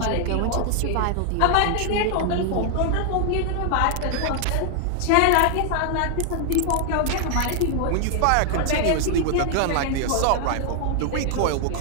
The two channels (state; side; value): different; both; correlation 0.00